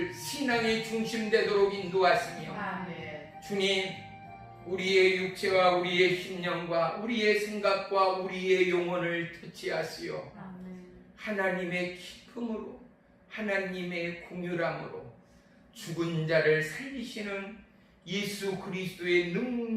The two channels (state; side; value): identical; both; correlation 1.00